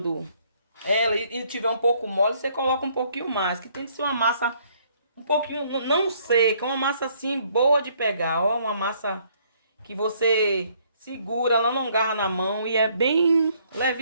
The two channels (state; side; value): inverted; both; correlation -0.65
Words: ela e tiver um pouco mole, você coloca um pouquinho mais, que tem que ser uma massa um pouquinho, não seca, uma massa assim boa de pegar, ó, uma massa que você segura, ela não agarra na mão e é bem